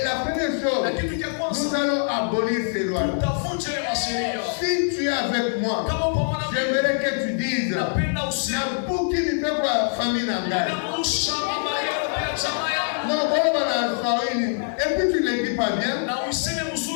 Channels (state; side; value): silent; right; digital silence